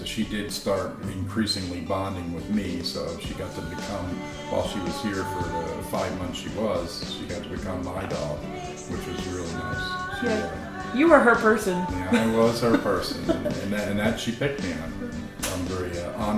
she did start increasingly bonding with me. So she got to become, while she was here for the 5 months she got to become my dog, which was really nice. Yeah. You were her person. Yeah, I was her person, and that she picked me. I'm very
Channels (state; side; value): identical; both; correlation 1.00